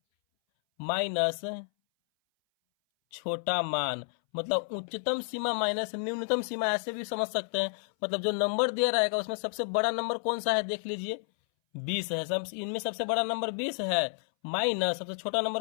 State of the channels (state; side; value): silent; right; 57 dB below the other